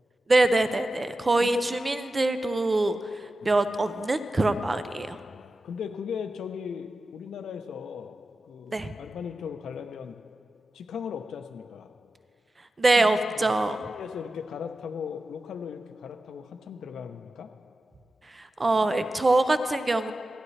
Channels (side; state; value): both; normal; correlation 0.93